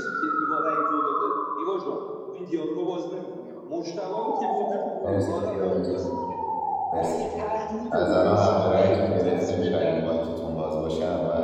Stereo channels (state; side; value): identical; both; correlation 1.00